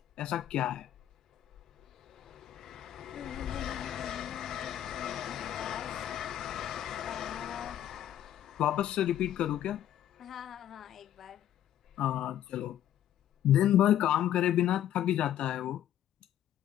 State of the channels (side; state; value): right; quieter; 11.4 dB